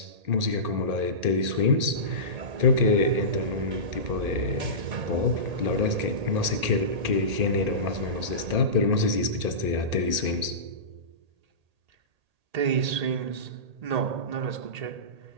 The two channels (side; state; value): left; late; 1.8 ms